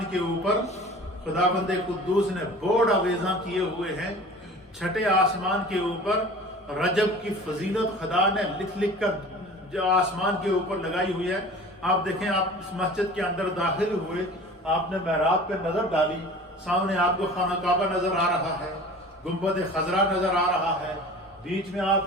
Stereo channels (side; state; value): both; normal; correlation 0.41